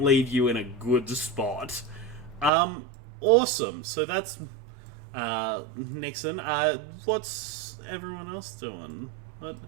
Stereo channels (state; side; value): drops out; left; at 2.5 s